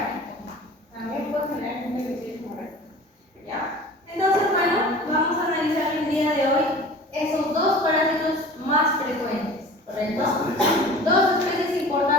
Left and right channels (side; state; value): both; normal; correlation 0.41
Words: También puede generar intrameningitis hemorrágica. ¿Ya? Entonces, bueno, vamos a analizar el día de hoy esos dos parásitos más frecuentes, ¿correcto? Dos especies